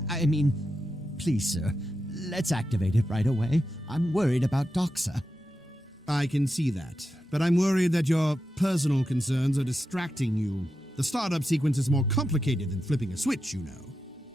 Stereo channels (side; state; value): both; normal; correlation 0.89